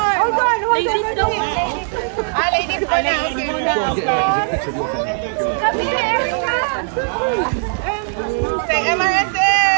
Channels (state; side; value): silent; left; 67 dB below the other